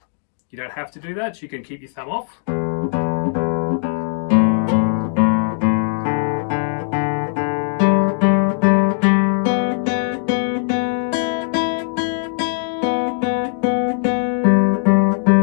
You don't have to do that. You can keep your thumb off.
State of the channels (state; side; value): silent; right; digital silence